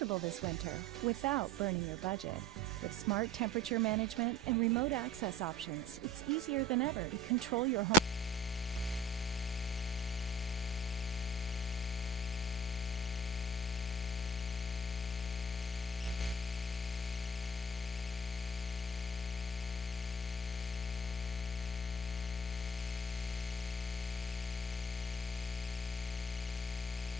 this winter without burning your budget. With smart temperature management and remote access options, it's easier than ever to control your home.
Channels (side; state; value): both; normal; correlation 0.47